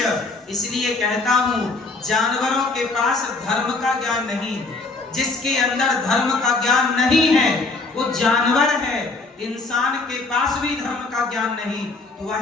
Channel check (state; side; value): quieter; right; 3.6 dB